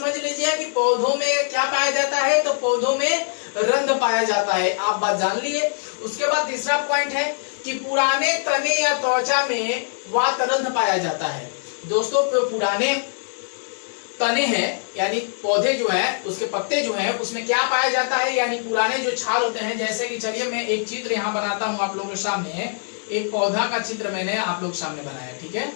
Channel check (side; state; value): right; silent; digital silence